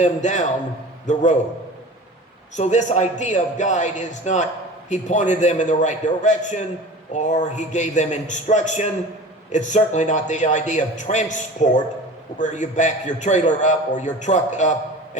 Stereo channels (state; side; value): normal; both; correlation 0.38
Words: down the road. So this idea of guide is not he pointed them in the right direction or he gave them instruction. It's certainly not the idea of transport, where you back your trailer up or your truck up